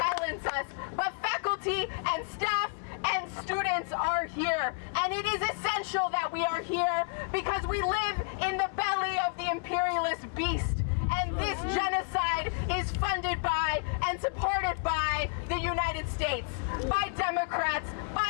us, but faculty and staff and students are here. And it is essential that we are here because we live in the belly of the imperialist beast. And this genocide is funded by and supported by the United States, by Democrats,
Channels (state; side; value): quieter; right; 32.4 dB